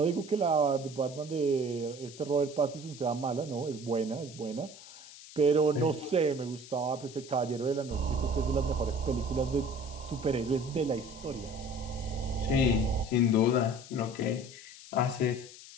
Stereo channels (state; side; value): noise; left; hiss, 17 dB below the sound